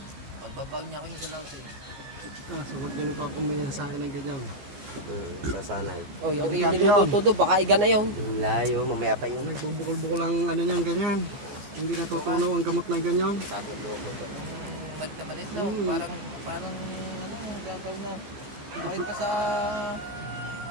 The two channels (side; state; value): left; late; 14 ms